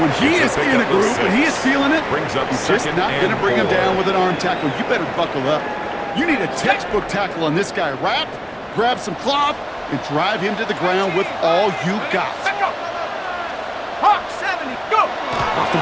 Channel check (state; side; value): identical; both; correlation 1.00